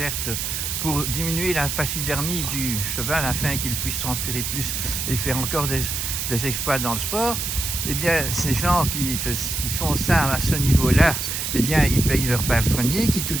pour diminuer la pachydermie du cheval afin qu'il puisse transpirer plus et faire encore des exploits dans le sport. Eh bien, ces gens qui font ça à ce niveau-là, eh bien, ils payent leur palefrenier qui,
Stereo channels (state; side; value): noise; right; hiss, 2 dB below the sound